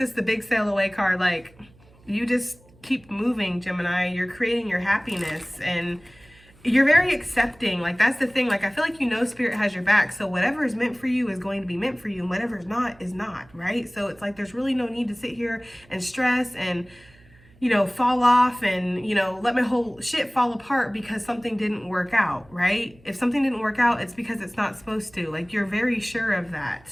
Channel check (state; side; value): noise; right; hum, 27 dB below the sound